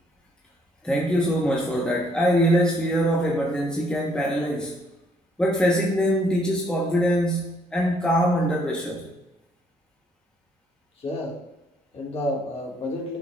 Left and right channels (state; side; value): normal; both; correlation 0.68